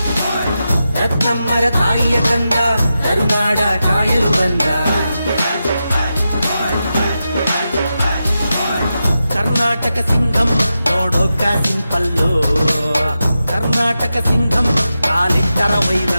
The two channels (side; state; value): both; inverted; correlation -0.90